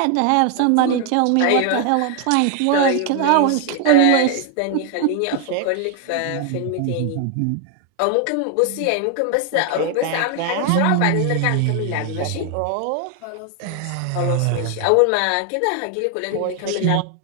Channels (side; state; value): both; different; correlation 0.00